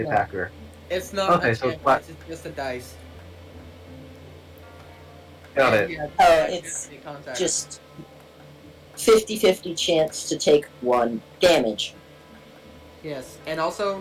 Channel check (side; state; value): both; identical; correlation 1.00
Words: attacker. It's not Okay, a so chance what- dice, it's just a dice. Got And it. yeah, Oh, yeah, it's make contact. Just 50-50 chance to take 1 damage. Yes, and